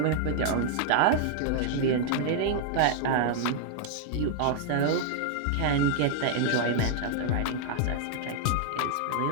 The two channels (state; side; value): different; both; correlation -0.01